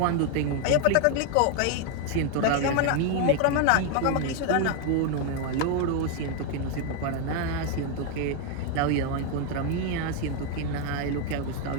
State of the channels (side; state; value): both; different; correlation 0.01